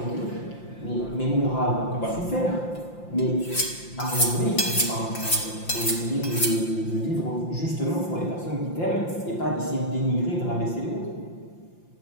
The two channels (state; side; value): late; right; 5.8 ms